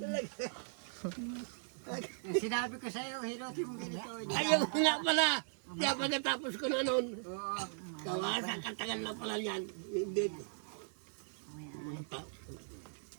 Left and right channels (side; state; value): left; silent; digital silence